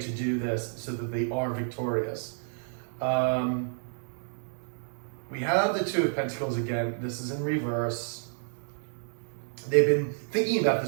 do this so that they are victorious. We have the Two of Pentacles again. This is in reverse. They've been thinking about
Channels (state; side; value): silent; left; digital silence